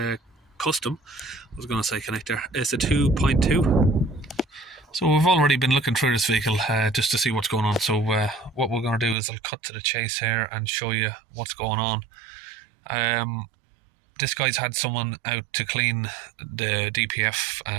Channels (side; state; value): left; drops out; at 9.2 s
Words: Custom. I was going to say connector. It's a 2.2. So we've already been looking through this vehicle just to see what's going on. So what we're going to do is I'll cut to the chase here and show you what's going on. This guy's had someone out to clean the